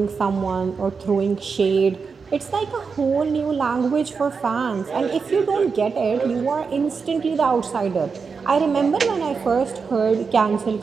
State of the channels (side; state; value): left; quieter; 5.3 dB